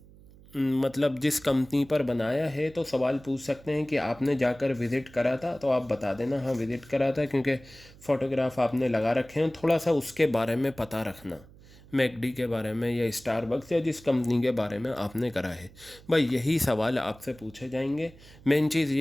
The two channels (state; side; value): noise; right; hum, 23 dB below the sound